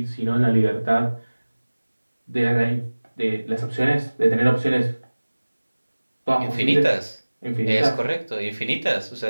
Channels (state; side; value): inverted; both; correlation -1.00